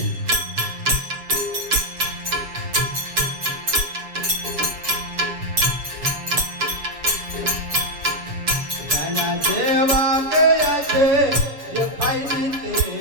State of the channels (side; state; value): left; late; 7.2 ms